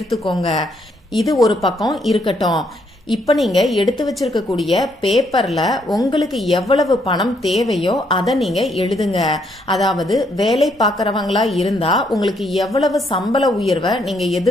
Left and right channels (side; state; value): both; normal; correlation 0.72